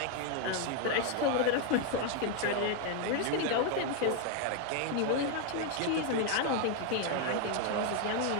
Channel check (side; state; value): both; different; correlation 0.01